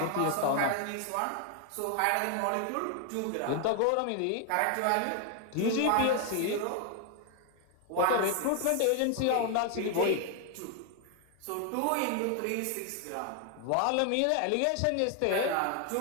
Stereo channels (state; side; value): different; both; correlation 0.00